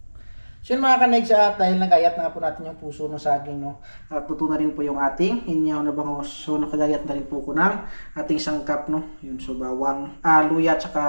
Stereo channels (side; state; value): both; inverted; correlation -1.00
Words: So yun, mga kanigs, at dahil nagayat na po natin yung puso ng saging, no, at tuto na rin po yung ating inihaw na bangus. So nakagayat na rin po ko ng ating sangkap, no. Yun, so bawang, luya at saka